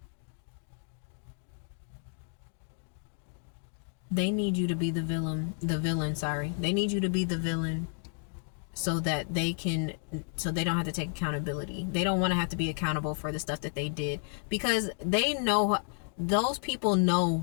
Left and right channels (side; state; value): right; silent; 57 dB below the other